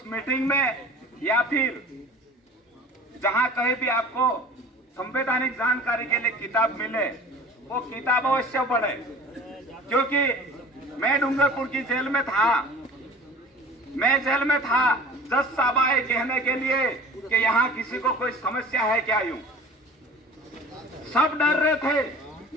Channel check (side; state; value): both; normal; correlation 0.43